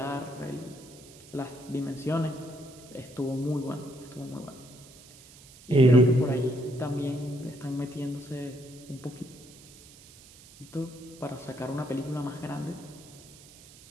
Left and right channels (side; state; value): right; noise; hiss, 21 dB below the sound